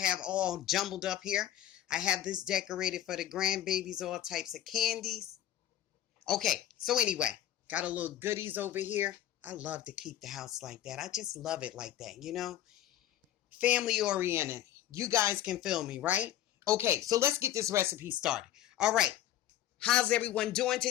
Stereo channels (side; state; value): right; quieter; 12.2 dB